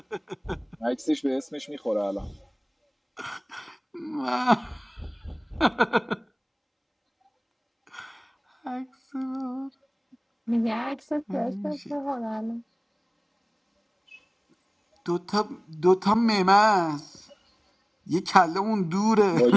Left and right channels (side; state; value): both; identical; correlation 1.00